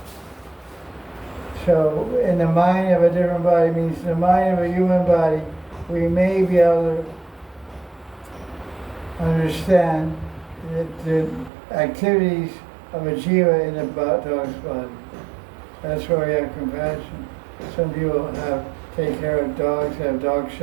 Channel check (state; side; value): drops out; left; at 11.5 s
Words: So, in the mind of a different body means in the mind of a human body, we may be able to understand the activities of a jiva in a dog's body. That's why we have compassion. Some people take care of dogs, have dog